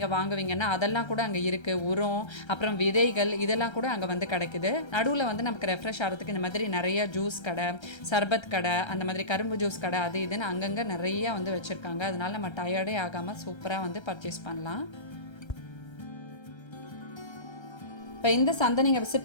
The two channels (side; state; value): right; late; 1.3 ms